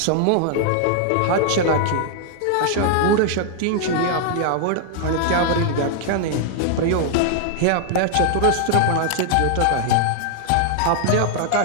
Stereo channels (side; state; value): both; different; correlation 0.00